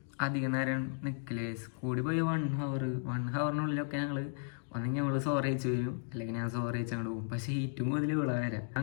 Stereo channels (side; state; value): right; silent; digital silence